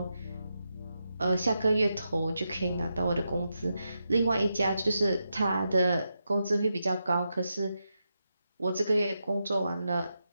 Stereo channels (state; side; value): inverted; both; correlation -0.86